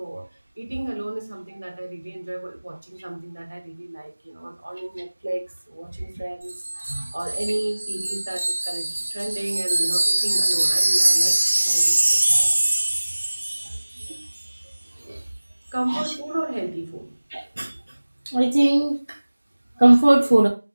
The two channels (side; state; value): both; inverted; correlation -1.00